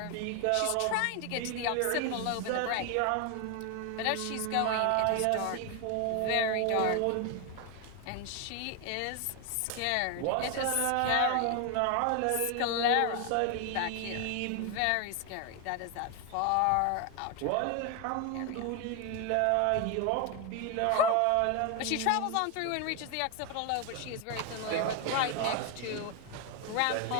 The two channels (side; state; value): both; different; correlation 0.01